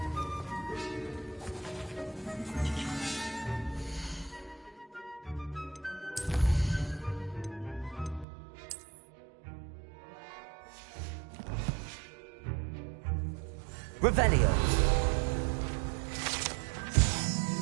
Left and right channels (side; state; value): left; drops out; at 8.2 s